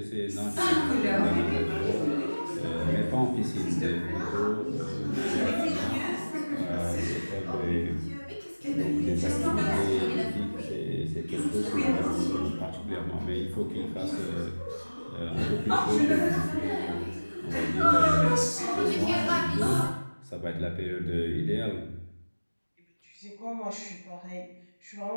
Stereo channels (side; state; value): both; inverted; correlation -1.00